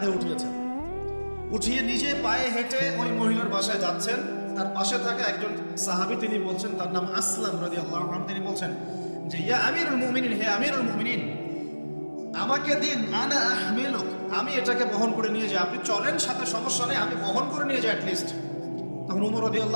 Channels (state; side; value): inverted; both; correlation -1.00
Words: উঠিয়েছেন, উঠিয়ে নিজে পায়ে হেঁটে ওই মহিলার বাসায় যাচ্ছেন। তার পাশে থাকা একজন সাহাবী, তিনি বলছেন, তার নাম আসলাম রাদিয়াল্লাহু আনহু, তিনি বলছেন যে ইয়া আমিরুল মুমিনিন, হে আমিরুল মুমিনিন, আমাকে দিন, আনা আহমিলুক, আমি এটাকে বহন করে নিয়ে যাই। আপনি চলেন সাথে, সমস্যা নেই, আমি বহন করে নিয়ে যাই অ্যাটলিস্ট। তখন উমর